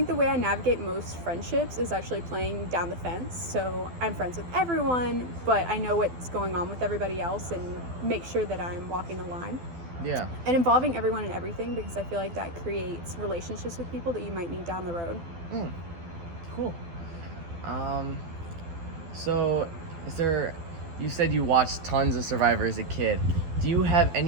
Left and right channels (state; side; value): late; left; 12 ms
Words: the way I navigate most friendships is actually playing down the fence. So I'm friends with everyone, but I know what's going on with everybody else and make sure that I'm walking the line. Yeah. And involving everyone in everything, because I feel like that creates relationships with people that you might need down the road. Cool. So you said you watched tons of Survivor as a kid. Do you have